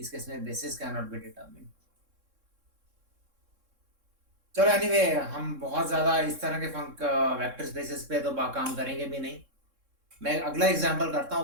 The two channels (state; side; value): late; left; 3.7 ms